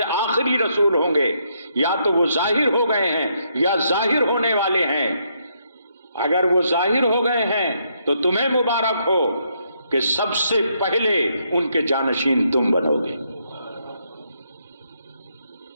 آخری رسول ہوں گے یا تو وہ ظاہر ہو گئے ہیں یا ظاہر ہونے والے ہیں۔ اگر وہ ظاہر ہو گئے ہیں تو تمہیں مبارک ہو کہ سب سے پہلے ان کے جانشین تم بنو گے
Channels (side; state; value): both; inverted; correlation -0.75